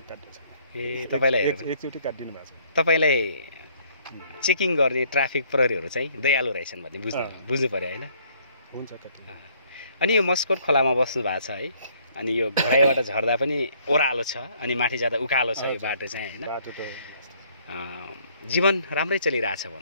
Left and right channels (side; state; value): both; inverted; correlation -0.63